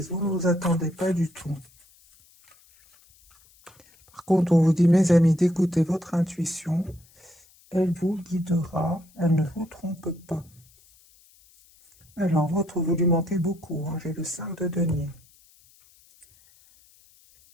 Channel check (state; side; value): noise; left; hiss, 29 dB below the sound